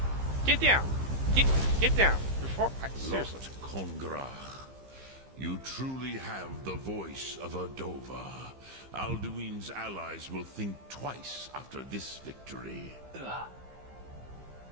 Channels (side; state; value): left; late; 15 ms